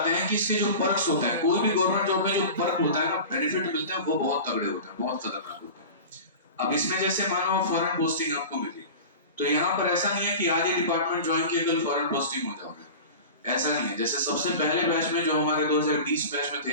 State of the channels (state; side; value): inverted; both; correlation -0.33